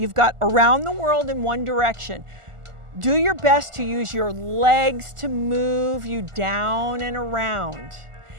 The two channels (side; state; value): left; late; 1.4 ms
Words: got around the world in one direction. Do your best to use your legs to move you down and around.